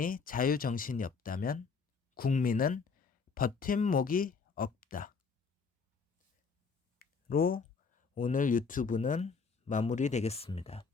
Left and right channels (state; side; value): quieter; right; 5.1 dB